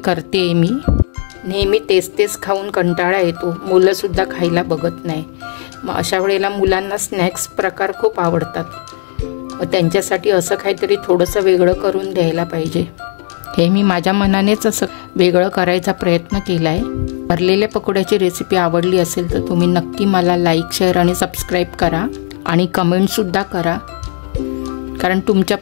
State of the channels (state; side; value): silent; right; digital silence